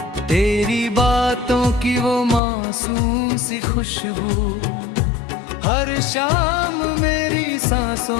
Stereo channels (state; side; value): drops out; right; at 2.4 s